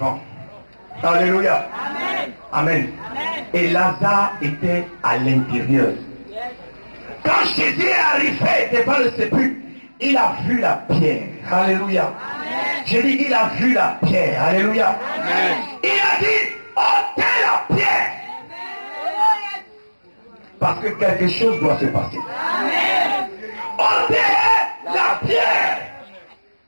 Alléluia. Amen. Amen. Amen. Et Lazare était à l'intérieur. Quand Jésus est arrivé devant le sépulcre, il a vu la pierre. Alléluia. Amen. J'ai dit, il a vu la pierre. Alléluia. Amen. Il a dit, ôtez la pierre. Amen. Parce que quelque chose doit se passer. Amen. Ôtez la pierre.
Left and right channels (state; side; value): inverted; both; correlation -1.00